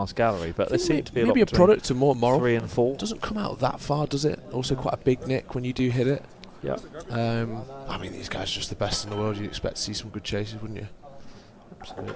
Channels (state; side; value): identical; both; correlation 1.00